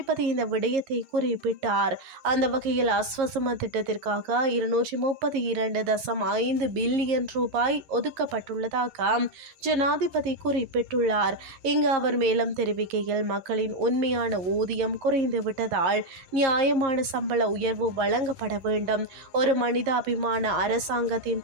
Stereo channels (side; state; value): left; late; 11 ms